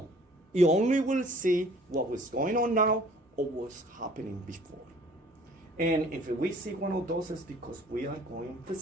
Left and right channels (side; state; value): both; normal; correlation 0.53